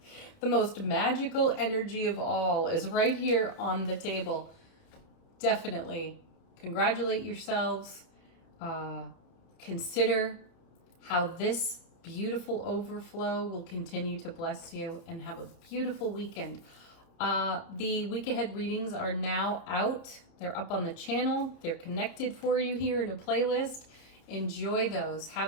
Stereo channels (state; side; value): late; right; 30 ms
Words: most magical energy of all is right here on the table. Definitely congratulate yourselves. Consider how this beautiful overflow will continue to bless you, and have a beautiful weekend. The week ahead readings are now out. They're up on the channel. They're connected for you here in a playlist. Enjoy those.